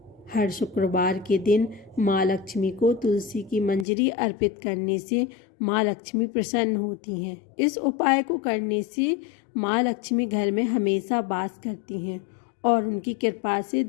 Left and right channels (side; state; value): right; drops out; at 3.9 s